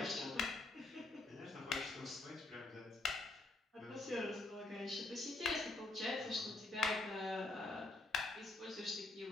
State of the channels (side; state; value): right; quieter; 3.1 dB